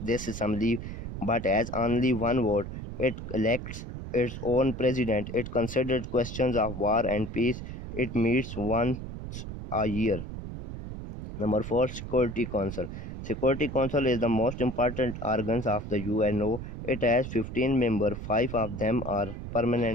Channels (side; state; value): right; noise; rumble, 8 dB below the sound